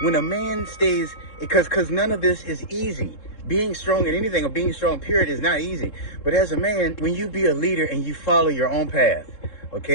When a man stays, because none of this is easy. Being strong in anything or being strong period is not easy. But as a man, when you be a leader and you follow your own path,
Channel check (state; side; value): late; right; 3.7 ms